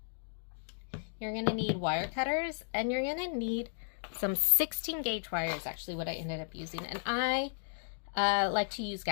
you're going to need wire cutters, and you're going to need some 16 gauge wire is actually what I ended up using. And I like to use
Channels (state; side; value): silent; right; digital silence